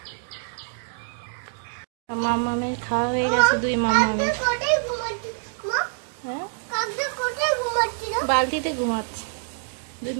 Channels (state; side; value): silent; left; 61 dB below the other